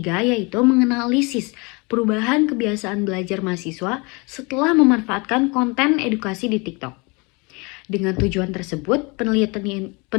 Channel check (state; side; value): quieter; right; 28.5 dB